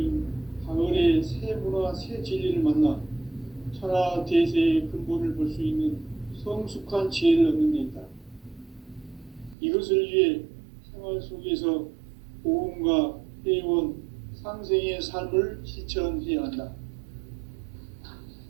가을의 새 문화, 새 진리를 만나 천하 대세의 근본을 볼 수 있는 성숙한 지혜를 얻는 데 있다. 이것을 위해 생활 속에서 보험과 회원, 상생의 삶을 실천해야 한다.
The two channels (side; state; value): left; drops out; at 9.6 s